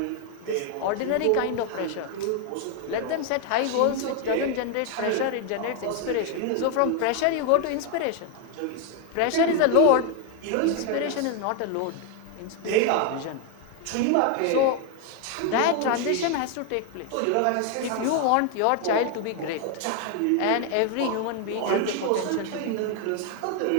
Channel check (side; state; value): both; different; correlation 0.01